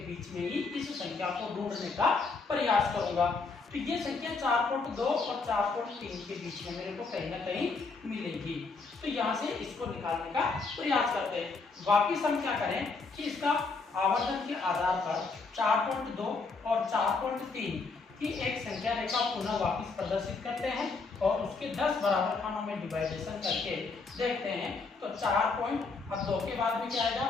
बीच में ही इस संख्या को ढूंढने का प्रयास करूंगा। तो ये संख्या 4.2 और 4.3 के बीच में मेरे को कहीं ना कहीं मिलेगी। तो यहाँ से इसको निकालने का प्रयास करते हैं। वापिस हम क्या करें कि इसका आवर्धन के आधार पर 4.2 और 4.3 की एक संख्या रेखा पुनः वापिस प्रदर्शित करते हैं और उसके 10 बराबर खानों में डिवाइडेशन करके देखते हैं। तो 4 पॉइंट, अब 2 के बाद में क्या आएगा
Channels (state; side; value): quieter; right; 4.2 dB